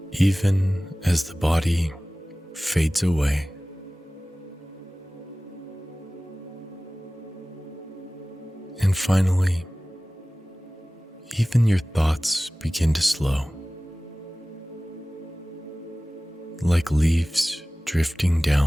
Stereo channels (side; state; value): both; normal; correlation 0.98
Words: even as the body fades away. And finally, even your thoughts begin to slow, like leaves drifting